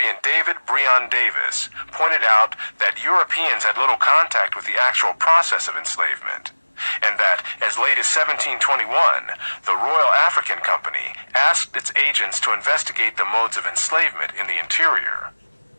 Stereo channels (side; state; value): both; inverted; correlation -1.00